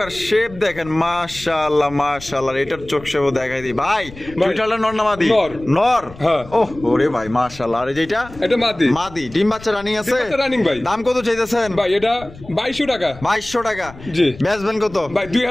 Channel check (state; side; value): noise; left; rumble, 18 dB below the sound